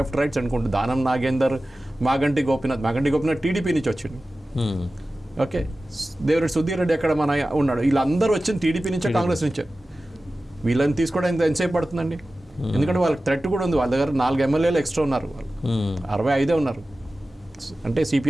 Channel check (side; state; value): both; normal; correlation 0.95